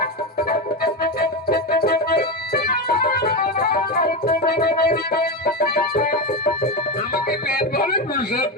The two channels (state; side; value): normal; both; correlation 0.14